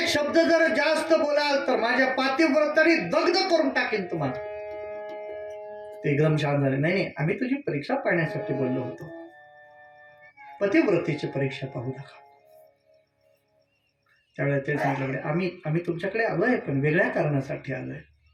शब्द जर जास्त बोलाल तर माझ्या पातिव्रताने दग्ध करून टाकेन तुम्हाला. ते एकदम शांत झाले. नाही नाही, आम्ही तुझी परीक्षा पाहण्यासाठी बोललो होतो, पतिव्रतेची परीक्षा पाहू नका. त्यावेळेला ते सांगितलं, आम्ही तुमच्याकडे आलोय पण वेगळ्या कारणासाठी आलोय.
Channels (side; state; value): both; identical; correlation 1.00